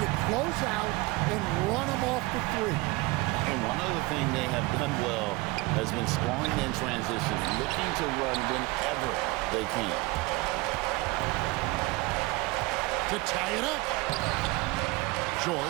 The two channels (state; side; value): quieter; left; 22.6 dB